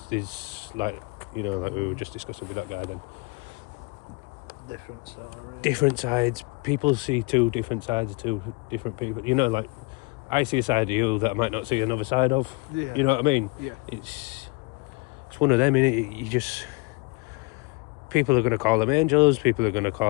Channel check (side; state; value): right; quieter; 28.0 dB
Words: like, you know, like we were just discussing with that guy then. Different story. Different sides. People see two different sides of two different people. You know, like, I see a side of you that I might not see another side of. Yeah. You know what I mean? Yeah. It's one of them, innit? You just... People are going to call them angels. People are going to